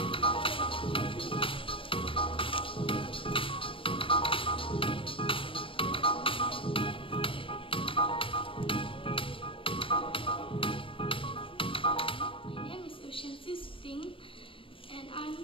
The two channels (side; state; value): right; late; 0.25 ms